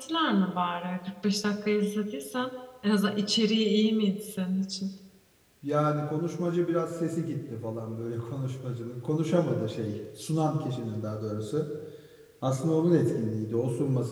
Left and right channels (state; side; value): identical; both; correlation 1.00